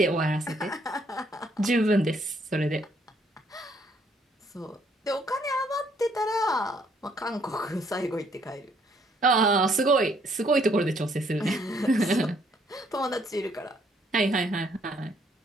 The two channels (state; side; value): normal; both; correlation 0.67